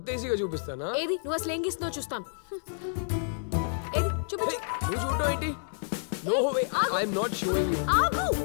ఈజీగా చూపిస్తానా? ఏది నువ్వు అసలు ఏం గీస్తున్నావు చూస్తాను. ఏది చూపించు. నువ్వు చూడటం ఏంటి? No way, I am not showing you. ఆగు,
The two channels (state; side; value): silent; right; digital silence